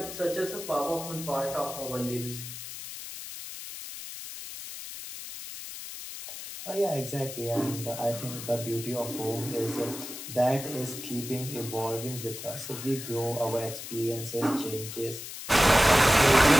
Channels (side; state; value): left; noise; hiss, 10 dB below the sound